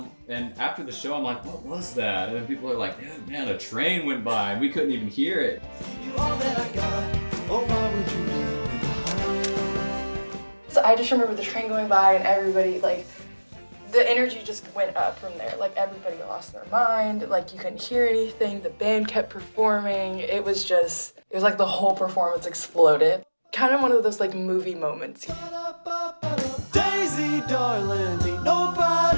And after the show, I'm like, what was that? And then people are like, man, a train went by and we couldn't even hear it. You all that I got. Oh, why would you leave me behind? So I just remember the train going by and everybody like the energy just went up from there. Like everybody lost their mind. Like you couldn't hear anything. The band kept performing. It was like the whole performance exploded. Kind of one of those like movie moments. Daisy, darling, ain't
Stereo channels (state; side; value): inverted; both; correlation -1.00